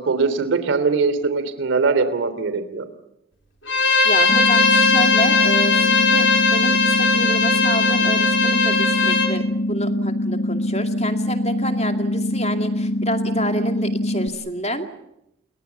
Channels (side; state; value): both; normal; correlation 0.22